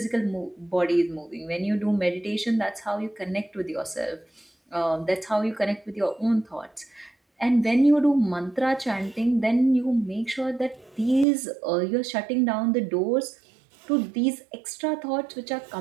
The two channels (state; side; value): drops out; left; at 11.2 s